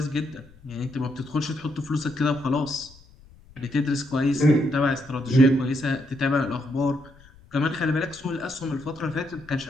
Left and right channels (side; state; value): left; noise; rumble, 25 dB below the sound